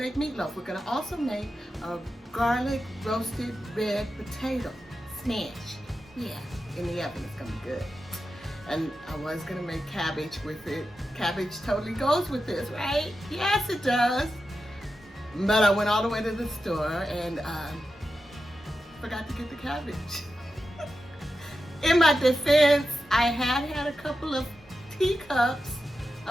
meatloaf. We're gonna also make a garlic roasted red potato smash. Yeah, in the oven, it's gonna be good. And I was gonna make cabbage with it. Cabbage totally goes with this, right? Yes, it does. But I went all the way to the store and forgot to get the cabbage. In my defense, I had a couple of teacups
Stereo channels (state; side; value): normal; both; correlation 0.90